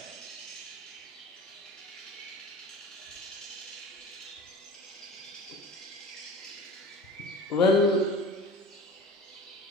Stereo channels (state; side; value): normal; both; correlation 0.38